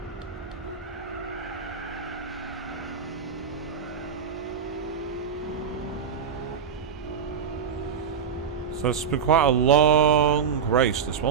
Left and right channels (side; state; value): left; quieter; 7.0 dB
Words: So it's been quite a long race, this